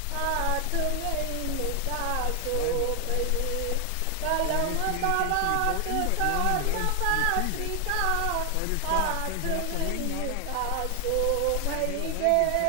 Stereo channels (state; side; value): different; both; correlation 0.00